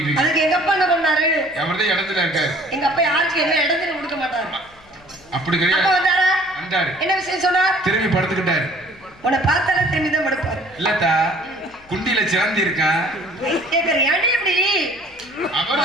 இருக்கேன். அதுக்கு எங்க அப்பா என்ன பண்ணாரு? அவர்தான் இடத்துல இருக்காரு. எங்க அப்பா யாருக்கு என்ன இடத்துல கொடுக்க மாட்டாரு. அப்படி கிடையாது. அப்பா வந்தாரா? வந்தாரு. என்ன விஷயம் சொன்னார்? திரும்பி படுத்துக்கிட்டாரு. உன்னை பார்த்தாலே திரும்பி தான் படுப்பாரு. இல்லத்தா, குண்டில சிறந்தி இருக்கான். கேக்குற ஏன்டி இப்படி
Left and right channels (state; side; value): noise; left; hum, 28 dB below the sound